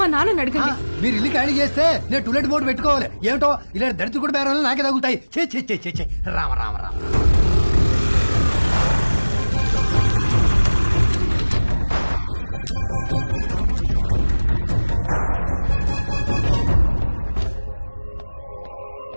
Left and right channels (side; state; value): both; inverted; correlation -1.00